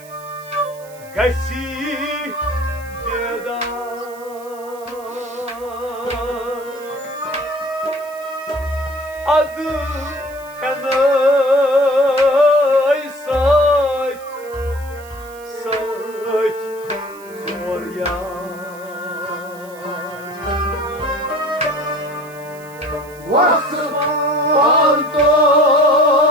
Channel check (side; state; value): right; noise; hiss, 22 dB below the sound